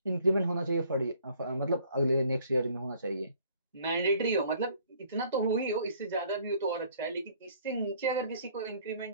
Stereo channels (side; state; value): both; inverted; correlation -0.59